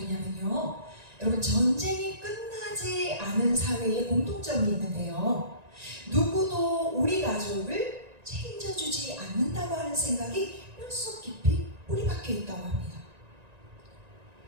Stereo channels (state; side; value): late; left; 1.9 ms